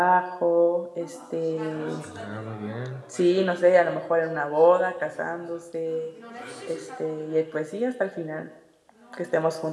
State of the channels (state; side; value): identical; both; correlation 1.00